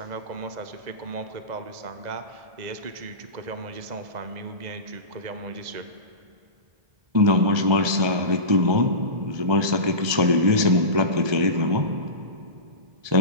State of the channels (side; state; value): left; late; 1.3 ms